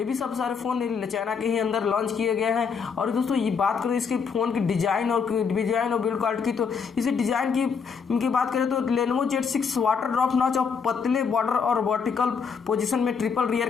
भी सब सारे फ़ोन चाइना के ही अंदर लॉन्च किए गए हैं। और दोस्तों ये बात करें इसके फ़ोन की डिज़ाइन और बिल्ड क्वालिटी की, तो इसे डिज़ाइन की बात करें तो Lenovo Z6 water drop notch और पतले बॉर्डर और वर्टिकल पोजीशन में ट्रिपल रियर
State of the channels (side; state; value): right; quieter; 6.0 dB